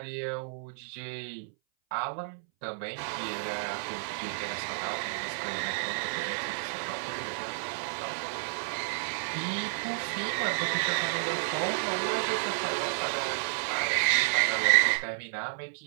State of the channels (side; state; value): left; silent; 57 dB below the other